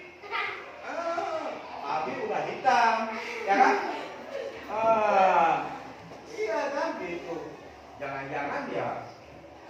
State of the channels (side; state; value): both; identical; correlation 1.00